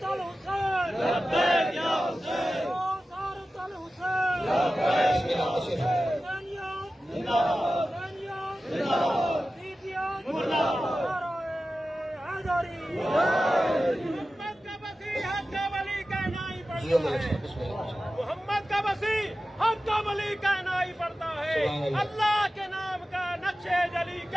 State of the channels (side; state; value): both; normal; correlation 0.94